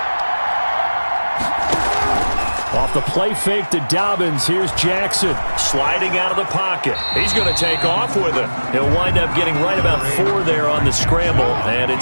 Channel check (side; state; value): both; inverted; correlation -1.00